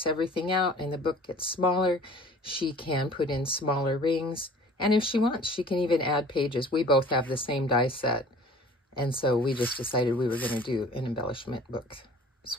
everything out and the book gets smaller, she can put in smaller rings, and if she wants, she can even add pages. We both have the same die set. And so we just decided we were going to do an embellishment book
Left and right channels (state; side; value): normal; both; correlation 0.47